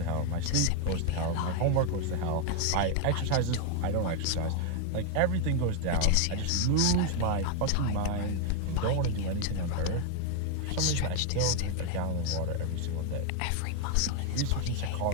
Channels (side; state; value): both; different; correlation 0.01